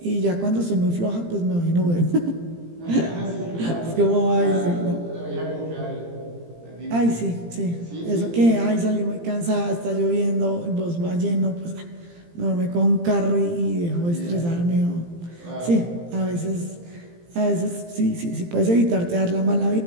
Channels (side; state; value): left; late; 17 ms